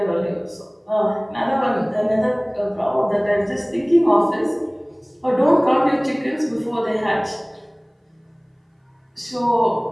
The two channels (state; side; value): identical; both; correlation 1.00